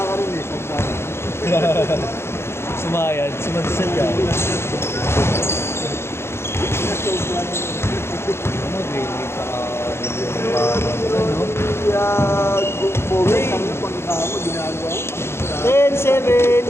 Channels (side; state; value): right; late; 0.12 ms